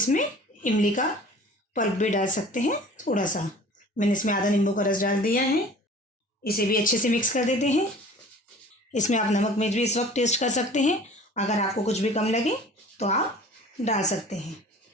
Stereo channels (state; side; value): normal; both; correlation 0.45